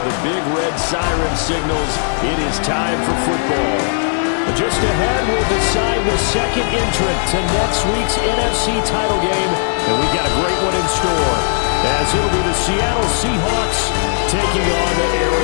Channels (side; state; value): right; silent; digital silence